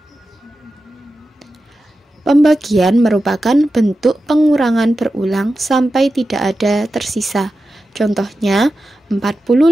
Pembagian merupakan bentuk pengurangan berulang sampai tidak ada tersisa. Contohnya,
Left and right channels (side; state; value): both; normal; correlation 0.92